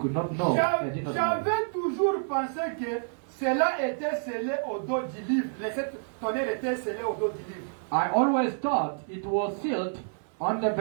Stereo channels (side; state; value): left; silent; digital silence